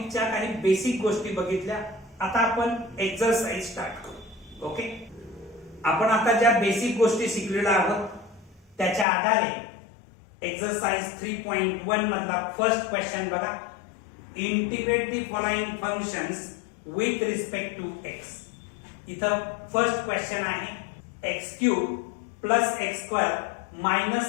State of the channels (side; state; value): right; drops out; at 9.1 s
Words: काही बेसिक गोष्टी बघितल्या. आता आपण एक्सरसाइज स्टार्ट करू. ओके, आपण आता ज्या बेसिक गोष्टी शिकलेल्या आहोत त्याच्या आधारे एक्सरसाइज 3.1 मधला फर्स्ट क्वेश्चन बघा. Integrate the following functions with respect to x. इथं फर्स्ट क्वेश्चन आहे x cube plus x square